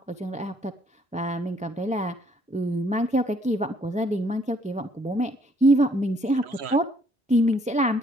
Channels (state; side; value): normal; both; correlation 0.65